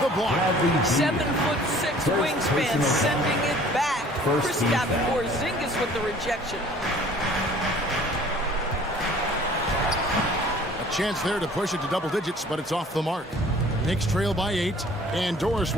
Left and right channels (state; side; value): normal; both; correlation 0.52